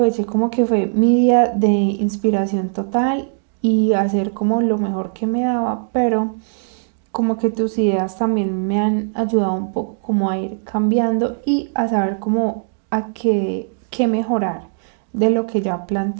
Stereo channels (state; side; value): silent; left; digital silence